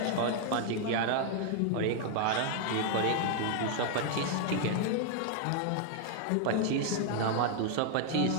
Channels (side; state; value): both; different; correlation 0.00